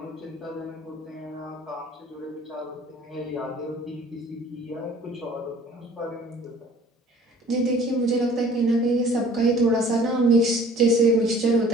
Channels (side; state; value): both; normal; correlation 0.52